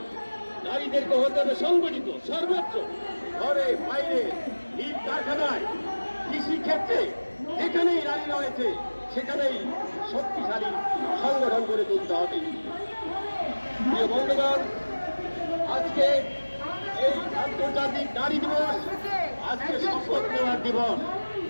নারীদেরকে হতে হবে সংগঠিত, সর্বোচ্চ ঘরে বাইরে, ইট কারখানায়, কৃষি ক্ষেত্রে, যেখানেই নারী রয়েছে সেখানেই শক্তিশালী সংগঠন করে তুলতে হবে। প্রিয় বন্ধুগণ, আজকে এই আন্তর্জাতিক নারী দিবস, আজকে শপথ নেওয়ার দিবস।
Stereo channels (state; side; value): inverted; both; correlation -1.00